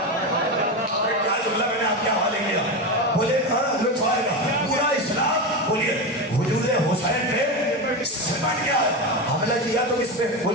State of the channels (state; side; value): normal; both; correlation 0.17